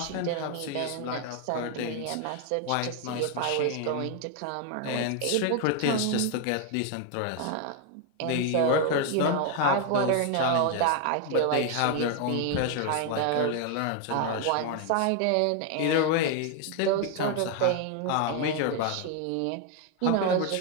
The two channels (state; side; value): different; both; correlation 0.01